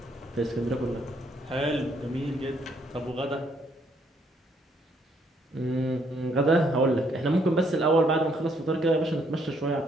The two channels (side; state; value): both; normal; correlation 0.69